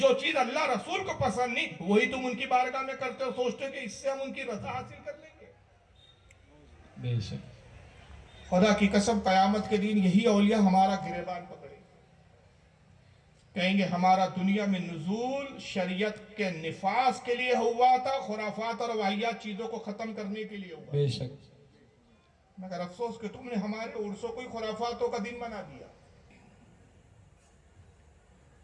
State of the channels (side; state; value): both; identical; correlation 1.00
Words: चीज अल्लाह रसूल को पसंद नहीं वही तुम उनकी बारगाह में करते हो, सोचते हो कि इससे हम उनकी रजा हासिल कर लेंगे। बेशक खुदा की कसम कयामत के दिन यही औलिया हमारा गिरेबान पकड़े, कहेंगे हमारा दुनिया में नुज़ूल शरीयत के निफास के लिए हुआ था, खुराफात और वाहियात चीजों को खत्म करने के लिए हुआ। बेशक मगर अफसोस कि तुमने हमारे उर्सों को खुराफातों का दिन बना दिया।